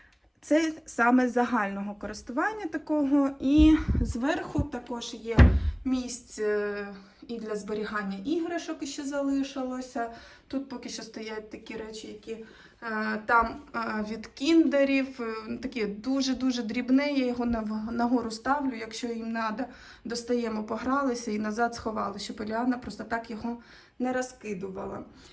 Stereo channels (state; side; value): identical; both; correlation 1.00